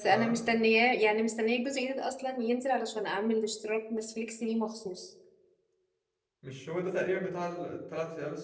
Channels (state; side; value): identical; both; correlation 1.00